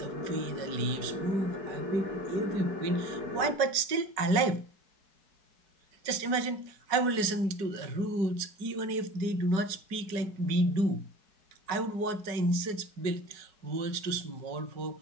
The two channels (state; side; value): late; left; 5.2 ms